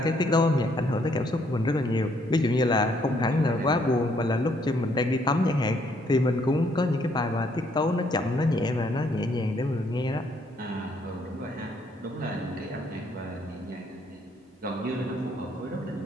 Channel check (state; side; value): normal; both; correlation 0.68